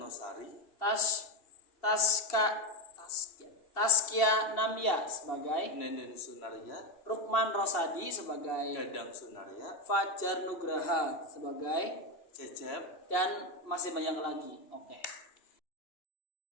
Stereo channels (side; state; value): right; late; 2.7 ms